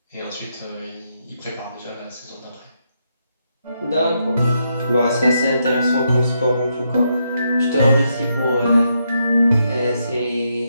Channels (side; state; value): both; inverted; correlation -0.80